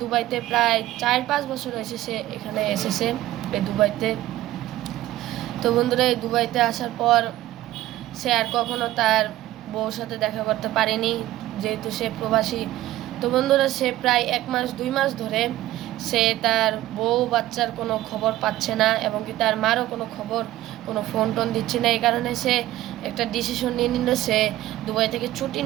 দুবাইতে প্রায় 4-5 বছর হয়েছে সে এখানে এসেছে, এই দুবাইতে। তো বন্ধুরা, এই দুবাইতে আসার পর সে আর কখনো তার বউর সাথে দেখা করতে পারেনি, যেহেতু সে প্রবাসী। তো বন্ধুরা, সে প্রায় 1 মাস 2 মাস ধরে সে তার বউ বাচ্চার কোনো খবর পাচ্ছে না, এবং কি তার মারও কোনো খবর, কোনো ফোন টোন দিচ্ছে না। এই কারণে সে একটা ডিসিশন নিয়ে নিল, সে দুবাই থেকে ছুটি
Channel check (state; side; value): quieter; left; 15.2 dB